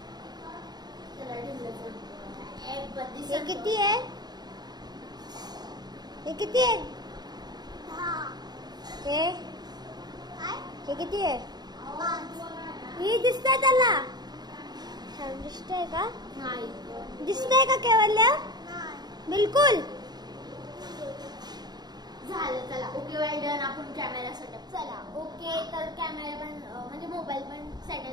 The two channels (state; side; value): late; left; 0.20 ms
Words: हे किती आहे? हे किती आहे? हे किती आहे? हे दिसतंय त्याला? दिसतंय का? नाही. दिसतंय का केवल्या? बिलकुल. झालं. चला ओके वेल डन. आपण कॅमेरा सेटअप. चला ओके. तर कॅमेरा पण म्हणजे मोबाईल पण